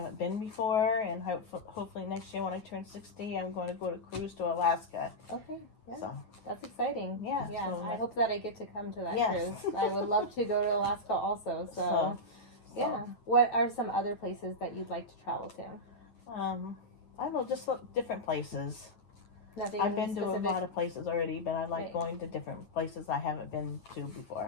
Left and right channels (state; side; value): late; right; 9.1 ms